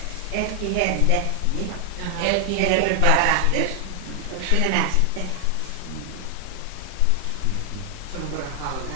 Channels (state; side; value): different; both; correlation 0.00